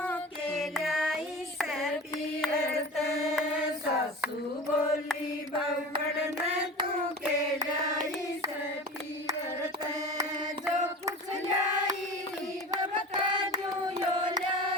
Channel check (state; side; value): normal; both; correlation 0.34